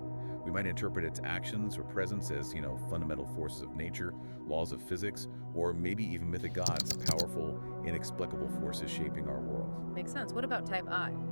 We might interpret its actions or presence as, fundamental forces of nature, laws of physics, or maybe even mythic gods, powerful, inexplicable forces shaping our world. Makes sense. What about type I?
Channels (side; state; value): both; inverted; correlation -1.00